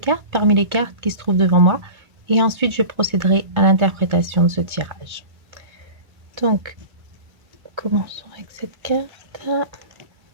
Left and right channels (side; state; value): left; late; 2.3 ms